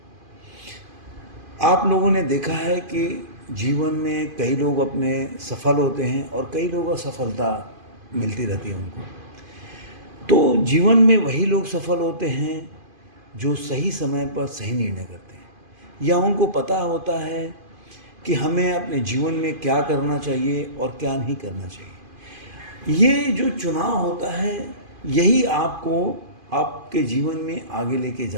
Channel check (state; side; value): late; left; 2.5 ms